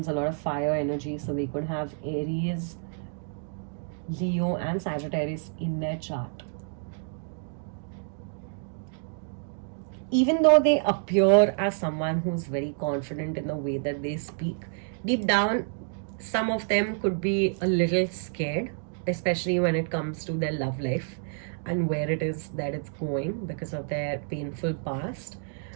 a lot of fire energy. So they could have Aries, Leo, and Sagittarius in their chart. Even though they appear as someone who's very confident in the way that they speak, deep down, some of them could be a little scared, especially when it comes to their love life and where it is that it's going because of their painful past.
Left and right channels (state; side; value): silent; left; digital silence